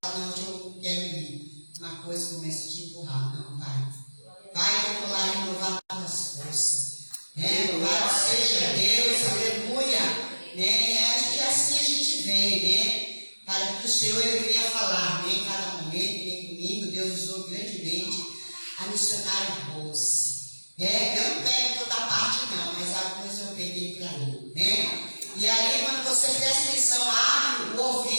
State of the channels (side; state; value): both; inverted; correlation -1.00